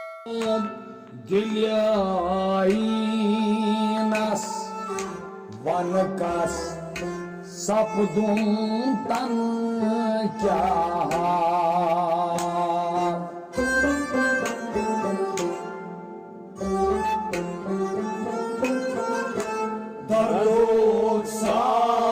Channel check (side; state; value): both; identical; correlation 1.00